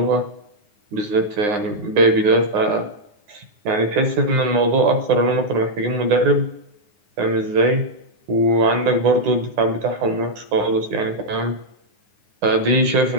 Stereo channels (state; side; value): late; left; 9.7 ms